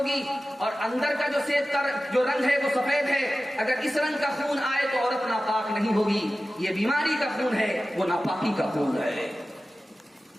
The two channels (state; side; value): normal; both; correlation 0.95